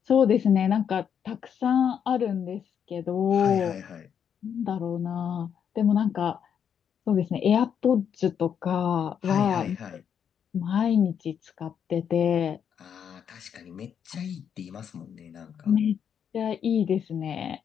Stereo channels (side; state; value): right; quieter; 8.0 dB